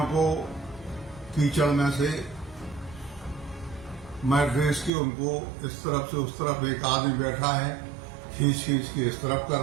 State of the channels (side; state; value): left; drops out; at 4.9 s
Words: को कीचड़ में से मैं ड्रेस की उनको इस तरफ से उस तरफ एक आदमी बैठा है, खींच के इस तरफ कर